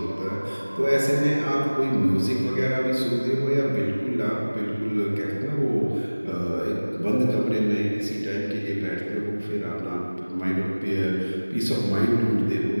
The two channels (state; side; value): inverted; both; correlation -1.00